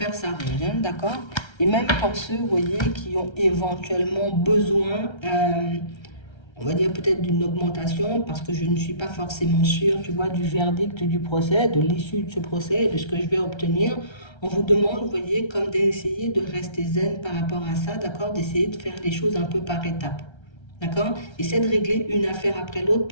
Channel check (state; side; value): late; right; 1.3 ms